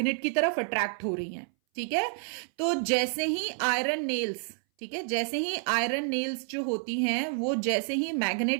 की तरफ अट्रैक्ट हो रही हैं, ठीक है. तो जैसे ही आयरन नेल्स, ठीक है, जैसे ही आयरन नेल्स जो होती हैं वो जैसे ही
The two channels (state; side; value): silent; left; 59 dB below the other